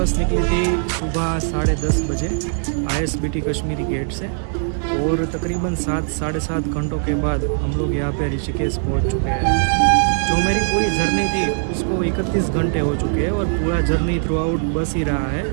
निकली थी सुबह 10:30 बजे ISBT कश्मीरी गेट से, और तकरीबन 7 साढ़े 7 घंटों के बाद हम लोग यहाँ पे ऋषिकेश पहुंच चुके हैं। जो मेरी पूरी जर्नी थी उसको 31 घंटे हो चुके हैं, और पूरा जर्नी थ्रू आउट बस ही रहा है।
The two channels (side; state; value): left; silent; 55 dB below the other